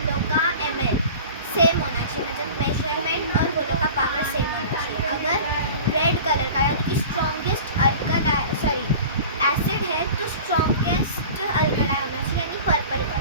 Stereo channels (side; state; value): both; inverted; correlation -0.38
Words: लोग का ml सेम होना चाहिए, मतलब मेजरमेंट और वो लोग का पावर सेम होना चाहिए। अगर रेड कलर का यानी कि स्ट्रॉन्गेस्ट एसिड है तो स्ट्रॉन्गेस्ट अल्कलाई होना चाहिए, यानी पर्पल